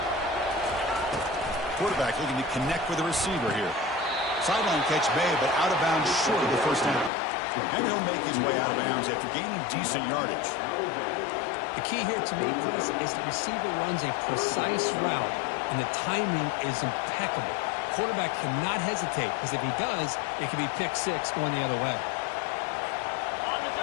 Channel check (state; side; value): drops out; right; at 7.1 s